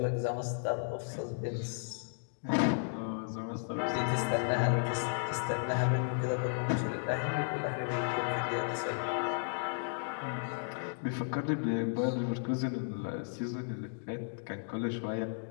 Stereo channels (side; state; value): right; silent; digital silence